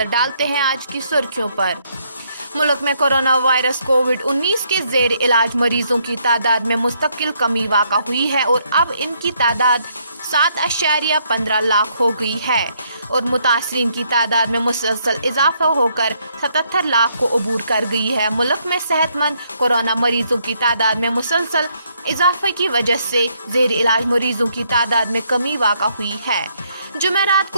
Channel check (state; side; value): inverted; both; correlation -0.72